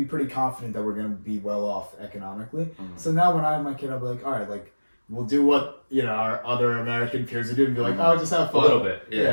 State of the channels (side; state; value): both; inverted; correlation -1.00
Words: pretty confident that we're going to be well off economically. Mm-hmm. So now when I have my kid, I'll be like, all right, we'll do what our other American peers are doing. Be like, oh, just have fun. A little bit,